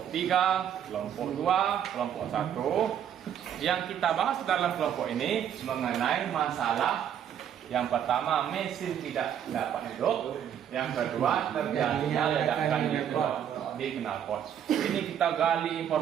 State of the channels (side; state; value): left; quieter; 9.3 dB